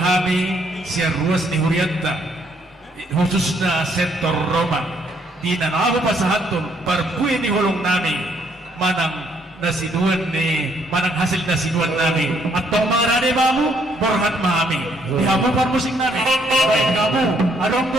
siar ruas ni hurianta khususnya sektor Roma di nanabu pasahatun parpui ni hulung nami manang nasiduan ni manang hasil nasiduan nami atau marane mamu borhat mahami di hamu parmusik nami baik kamu adong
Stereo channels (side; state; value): both; normal; correlation 0.68